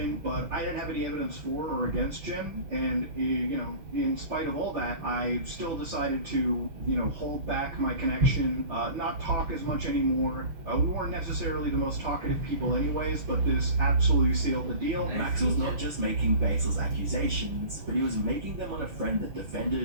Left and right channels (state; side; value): late; left; 6.4 ms